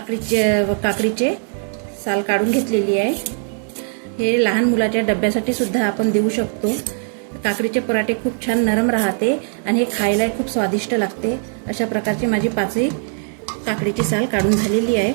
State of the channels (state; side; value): silent; left; 57 dB below the other